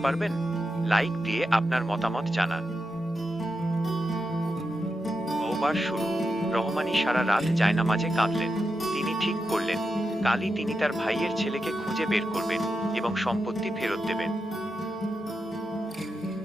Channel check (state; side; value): normal; both; correlation 0.88